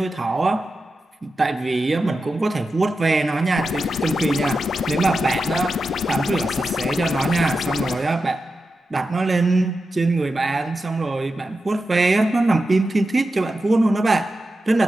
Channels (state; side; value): normal; both; correlation 0.90